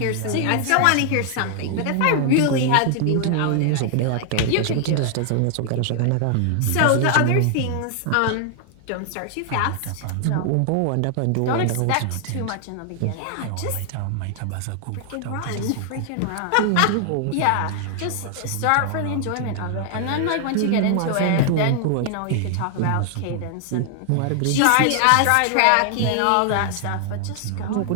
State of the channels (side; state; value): both; different; correlation 0.00